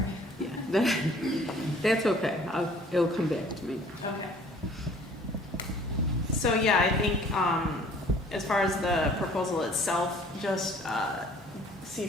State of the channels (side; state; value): both; normal; correlation 0.54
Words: Yeah, that's okay. It'll come back to me. Okay. So, yeah, I think, as far as the proposal itself, just, see